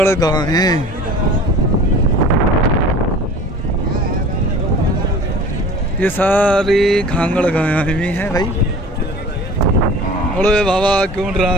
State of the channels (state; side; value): normal; both; correlation 0.42